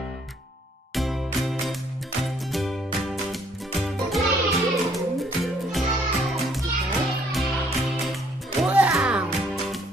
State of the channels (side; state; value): both; normal; correlation 0.65